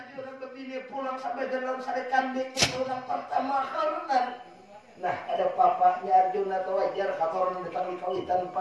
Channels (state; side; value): identical; both; correlation 1.00